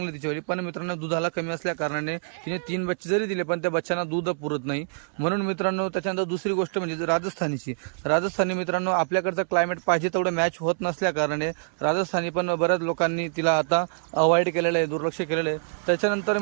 तिच्यावर, पण मित्रांनो दुधाला कमी असल्या कारणाने तिने 3 बच्चे जरी दिले पण त्या बच्चांना दूध पुरत नाही. म्हणून मित्रांनो, त्याच्यानंतर दुसरी गोष्ट म्हणजे राजस्थानी मित्रांनो, आपल्याकडचं क्लायमेट पाहिजे तेवढं मॅच होत नसल्या कारणाने राजस्थानी पण बऱ्याच लोकांनी तिला आता अवॉइड केलेलं आहे, दुर्लक्ष केलेलं आहे. त्याच्यानंतर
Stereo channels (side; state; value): left; silent; 61 dB below the other